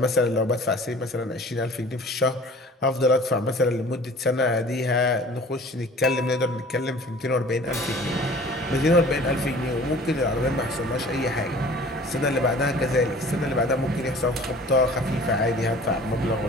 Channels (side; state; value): both; normal; correlation 0.47